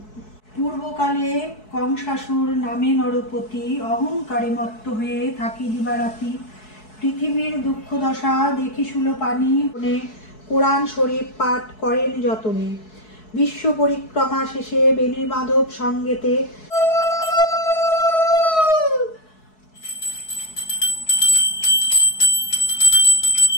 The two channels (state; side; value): late; right; 4.7 ms